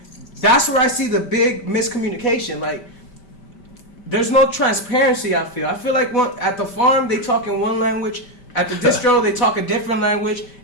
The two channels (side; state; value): right; late; 5.1 ms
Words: That's where I see the big miscommunication. Like, there's no transparency, I feel. I feel like at the farm, they talk in one language. At the distro, they talk a different language.